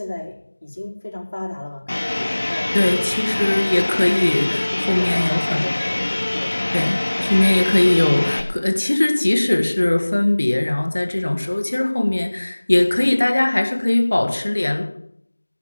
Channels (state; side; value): inverted; both; correlation -1.00